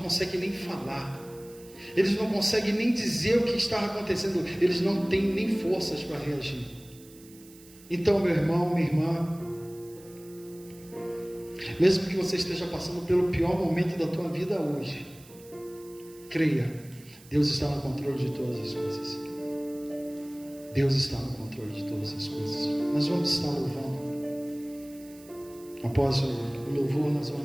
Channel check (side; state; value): right; noise; hiss, 23 dB below the sound